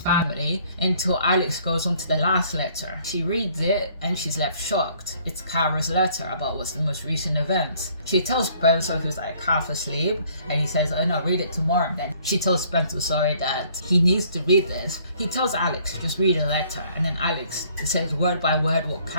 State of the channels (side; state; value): both; inverted; correlation -0.60